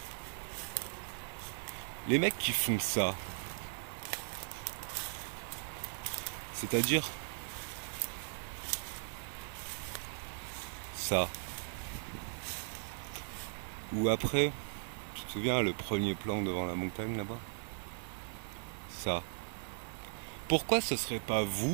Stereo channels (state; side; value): silent; left; digital silence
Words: Les mecs qui font ça, c'est-à-dire ça, ou après, tu te souviens le premier plan devant la montagne là-bas? Ça. Pourquoi ce serait pas